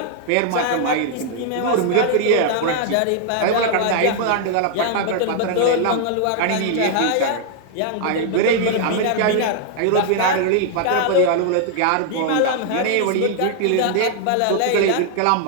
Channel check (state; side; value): different; both; correlation 0.00